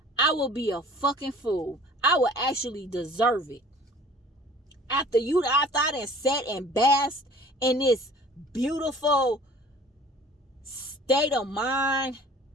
I will be a fucking fool. I will actually deserve it. After I done sat and basked in this beautiful state of mind.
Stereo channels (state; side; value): normal; both; correlation 0.49